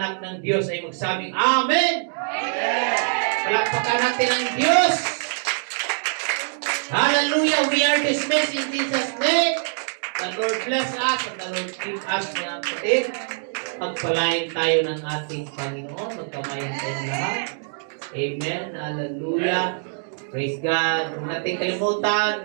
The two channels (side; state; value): left; silent; digital silence